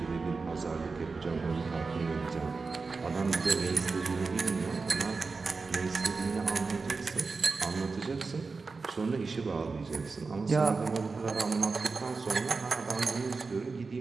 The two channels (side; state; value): left; quieter; 4.3 dB